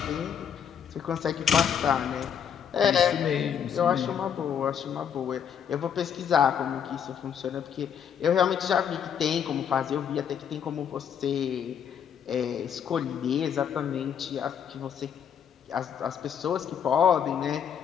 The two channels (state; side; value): quieter; right; 8.2 dB